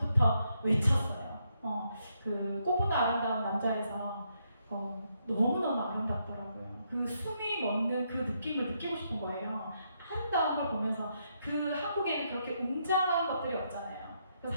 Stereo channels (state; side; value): inverted; both; correlation -0.78